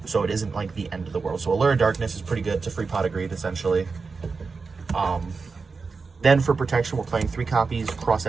so it isn't like the end of the world. So Allure of Darkness is pretty good. It's a free pot of greed, essentially. Then for protection, we're playing 3 copies, cross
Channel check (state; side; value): quieter; left; 4.6 dB